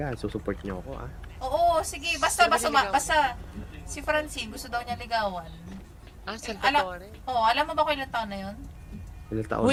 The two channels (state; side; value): identical; both; correlation 1.00